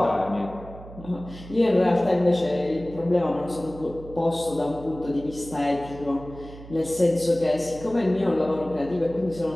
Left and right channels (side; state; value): right; noise; hum, 16 dB below the sound